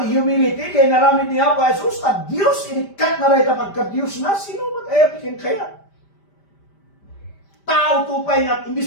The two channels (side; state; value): right; late; 5.1 ms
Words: humility, kaya naramid niya po, Jesus, na Diyos, inikat na rin kapag ka-Diyos na, sino matayap ikin kaya? Tao tupay nga,